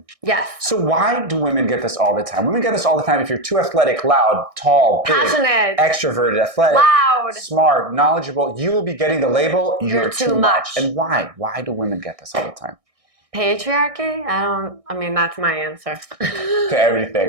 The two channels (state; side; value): late; left; 1.6 ms